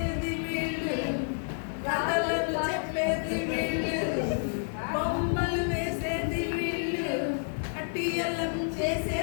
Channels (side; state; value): right; silent; digital silence